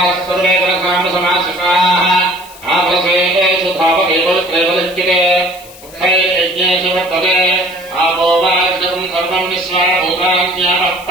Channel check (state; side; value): noise; left; hiss, 20 dB below the sound